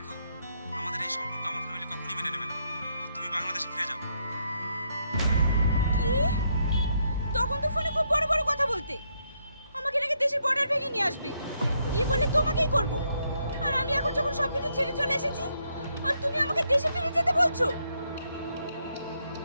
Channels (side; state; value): both; inverted; correlation -0.76